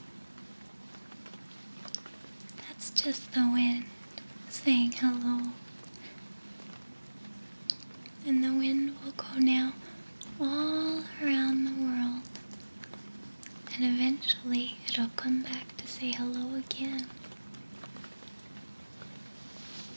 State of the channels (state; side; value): inverted; both; correlation -1.00